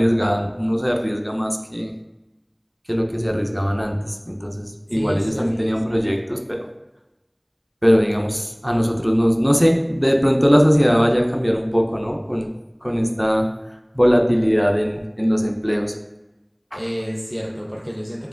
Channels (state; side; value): identical; both; correlation 1.00